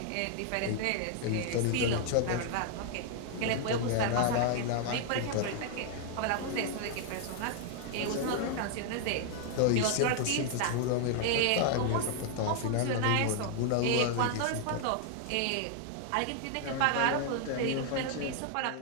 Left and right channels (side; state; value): both; different; correlation 0.00